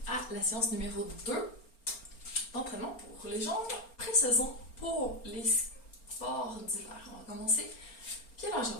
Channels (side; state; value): right; late; 4.4 ms